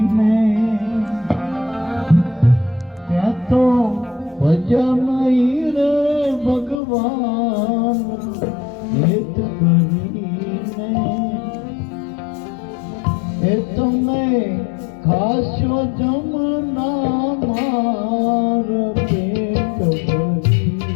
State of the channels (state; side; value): drops out; right; at 6.8 s